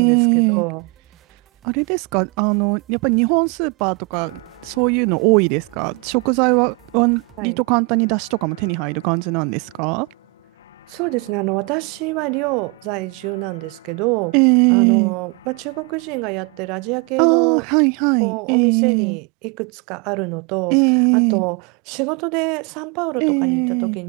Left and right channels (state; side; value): quieter; left; 28.4 dB